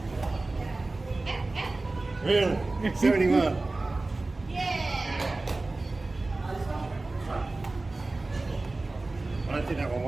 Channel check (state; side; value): quieter; left; 3.2 dB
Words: Really? 71. Yeah. I don't think that one